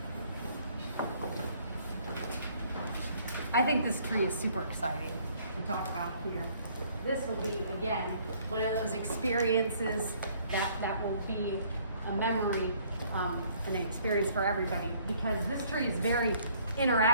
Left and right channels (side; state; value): both; inverted; correlation -0.61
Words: I think this tree is super exciting to talk about here. This will be, again, one of those experiences that will be a memory, an experience for everybody, because this tree is very